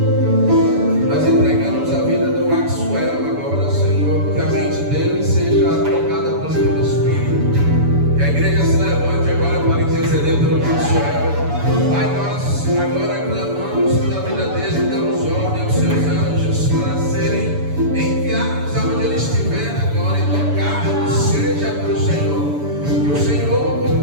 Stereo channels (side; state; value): left; late; 7.0 ms